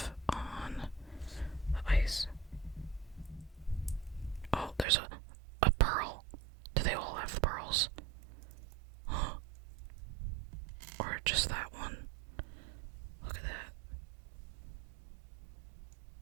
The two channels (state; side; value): drops out; left; at 4.9 s